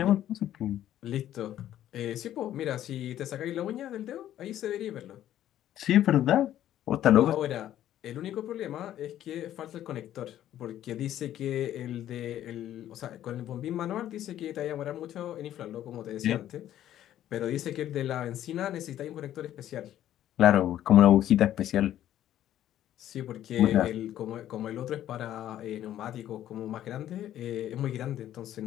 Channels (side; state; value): right; quieter; 12.0 dB